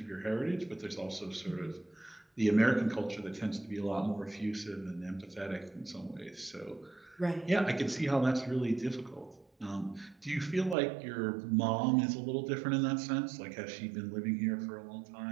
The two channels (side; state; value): left; drops out; at 10.8 s